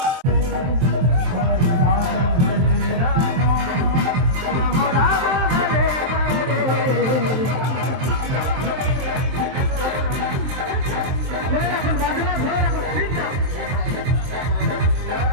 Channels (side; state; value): left; late; 23 ms